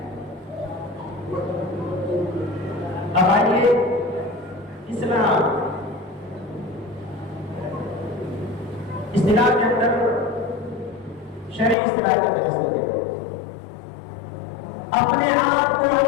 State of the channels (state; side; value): drops out; right; at 11.8 s